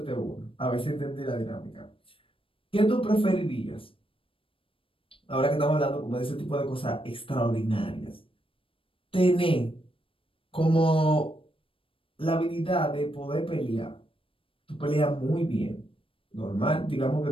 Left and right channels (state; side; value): late; right; 0.26 ms